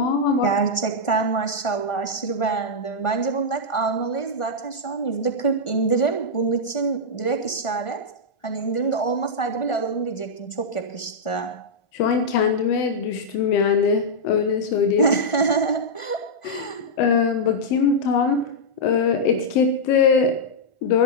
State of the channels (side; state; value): right; late; 1.4 ms